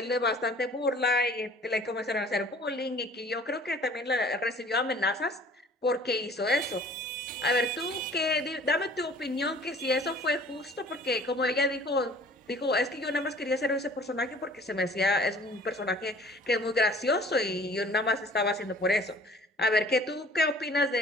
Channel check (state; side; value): normal; both; correlation 0.50